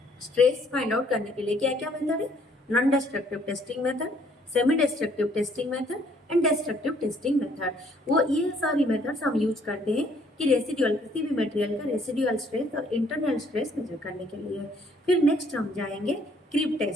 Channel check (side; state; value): both; normal; correlation 0.63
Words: स्ट्रेस फाइंड आउट करने के लिए। क्या क्या मेथड है? Non destructive testing method, semi destructive testing method and destructive testing method. वो ये सारी मेथड्स हम यूज करते हैं कि रेसिडुअल किसी भी मटेरियल का रेसिडुअल स्ट्रेस और इंटरनल स्ट्रेस मेजर करने के लिए। फिर नेक्स्ट हम जाएंगे क्रीप